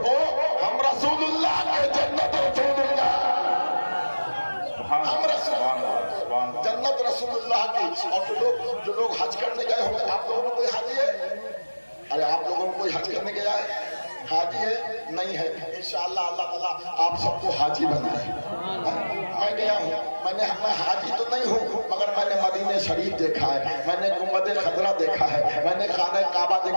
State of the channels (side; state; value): both; inverted; correlation -1.00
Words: हो, हम रसूलुल्लाह के जन्नत रसूलुल्लाह, हम रसूलुल्लाह जन्नत रसूलुल्लाह की। और जो लोग हज करने गए होंगे, आप लोगों में कोई हाजी है? अरे आप लोगों को कोई हज करने गया है? हाजी है? नहीं है? इंशाअल्लाह अल्लाह ताला आप सबको हाजी बनाए। मैं गया हूँ, मैं हाजी तो नहीं हूँ, मगर मैंने मदीने शरीफ देखा है, मैंने गुंबद खजरा देखा है, मैंने खाने काबा